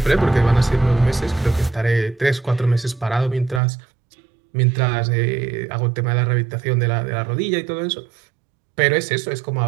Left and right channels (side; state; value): left; drops out; at 3.6 s